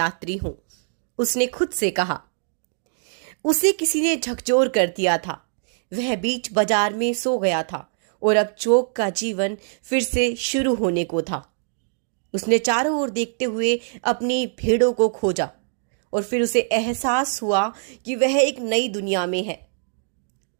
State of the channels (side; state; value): left; silent; digital silence